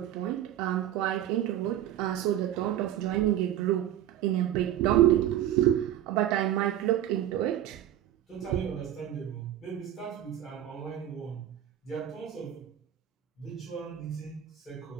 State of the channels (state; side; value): quieter; left; 11.9 dB